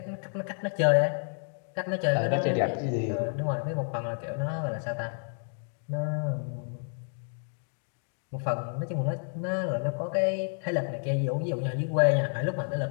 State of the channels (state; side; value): silent; right; digital silence